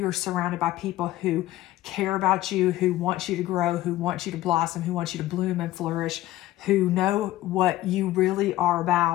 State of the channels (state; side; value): quieter; right; 15.6 dB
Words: surrounded by people who care about you, who want you to grow, who want you to blossom, who want you to bloom and flourish, who know what you really are